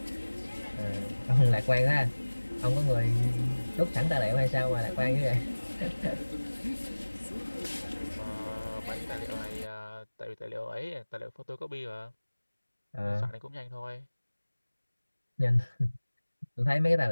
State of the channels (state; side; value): inverted; both; correlation -1.00